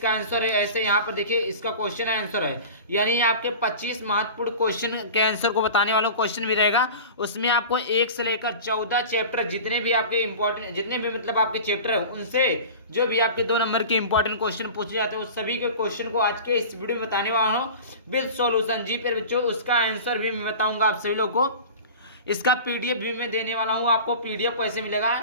आंसर है ऐसे। यहाँ पर देखिए इसका क्वेश्चन आंसर है, यानी आपके 25 महत्वपूर्ण क्वेश्चन के आंसर को बताने वाला क्वेश्चन भी रहेगा। उसमें आपको 1 से लेकर 14 चैप्टर जितने भी आपके इंपॉर्टेंट, जितने भी मतलब आपके चैप्टर है, उनसे जो भी आपके 2 नंबर के इंपॉर्टेंट क्वेश्चन पूछे जाते हैं, उस सभी के क्वेश्चन को आज के इस वीडियो में बताने वाला हूँ विद सॉल्यूशन। जी फिर बच्चों, उसका आंसर भी मैं बताऊंगा आप सभी लोग को। इसका पीडीएफ भी मैं देने वाला हूं आपको। पीडीएफ कैसे मिलेगा?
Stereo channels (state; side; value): inverted; both; correlation -0.36